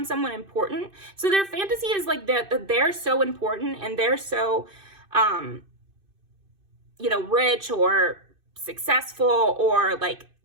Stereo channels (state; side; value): late; left; 2.5 ms